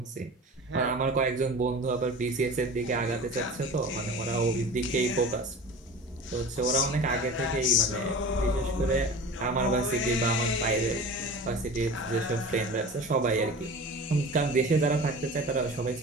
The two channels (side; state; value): both; normal; correlation 0.36